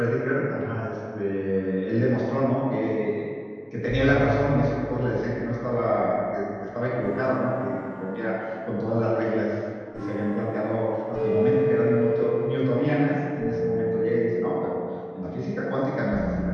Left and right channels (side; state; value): both; identical; correlation 1.00